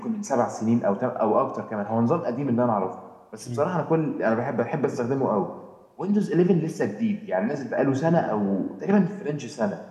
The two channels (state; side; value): identical; both; correlation 1.00